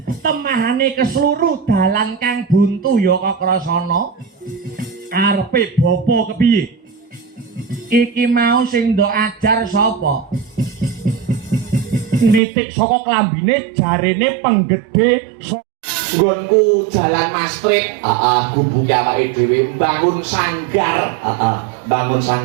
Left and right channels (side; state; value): left; drops out; at 12.4 s